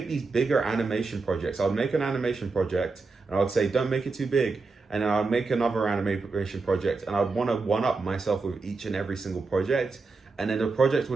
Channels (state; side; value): quieter; left; 4.0 dB